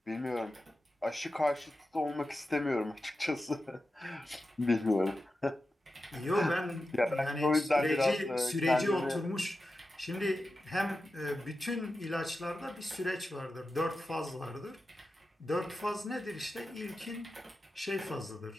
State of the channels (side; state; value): both; normal; correlation 0.92